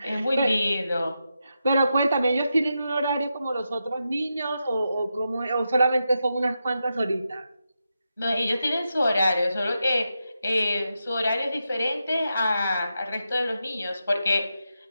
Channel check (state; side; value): inverted; both; correlation -0.87